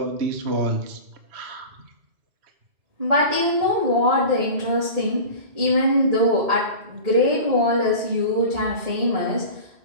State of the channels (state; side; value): late; left; 1.8 ms